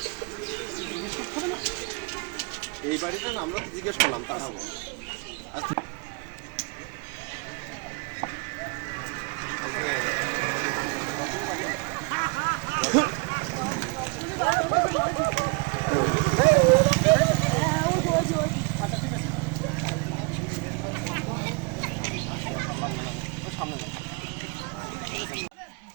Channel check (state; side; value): quieter; left; 30.8 dB